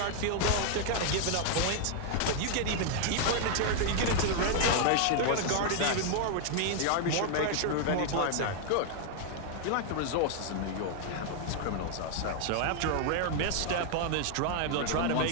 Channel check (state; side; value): different; both; correlation 0.00